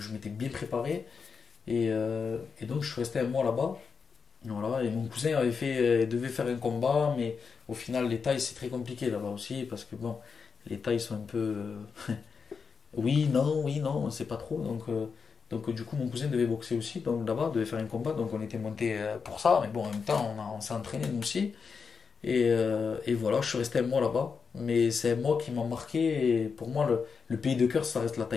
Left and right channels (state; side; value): quieter; right; 5.6 dB